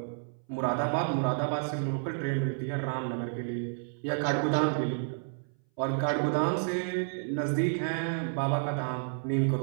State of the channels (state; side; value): silent; left; 57 dB below the other